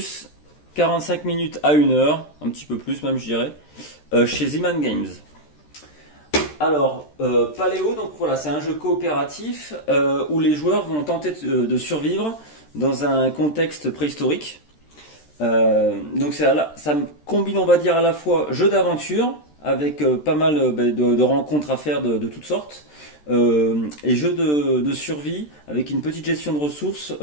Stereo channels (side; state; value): right; late; 13 ms